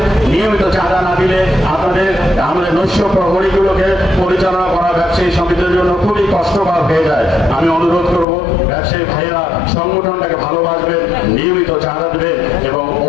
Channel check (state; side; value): drops out; right; at 8.2 s